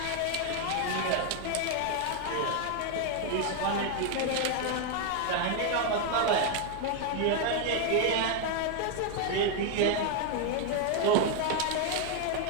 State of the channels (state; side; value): different; both; correlation 0.01